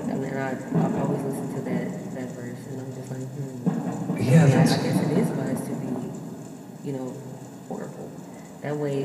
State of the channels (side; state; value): both; identical; correlation 1.00